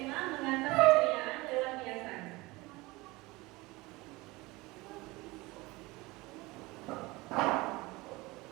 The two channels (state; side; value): quieter; left; 22.0 dB